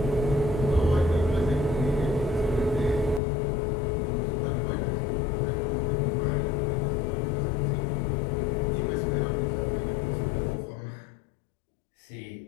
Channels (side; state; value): right; drops out; at 3.2 s